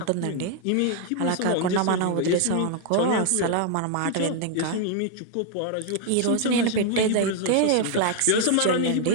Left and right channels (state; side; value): different; both; correlation 0.00